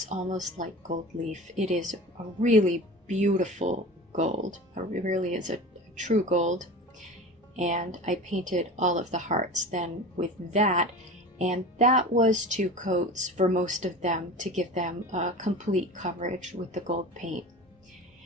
almost like gold leaf. It is a really beautiful gold. It really is a true gold. And I painted all of the hearts then with that. And that was 2 coats for most of them to give them a complete coverage with the gold paint.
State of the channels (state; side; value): normal; both; correlation 0.34